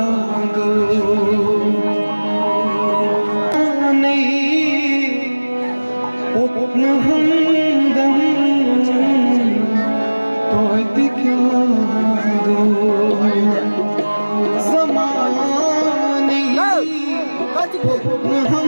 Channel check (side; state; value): both; inverted; correlation -1.00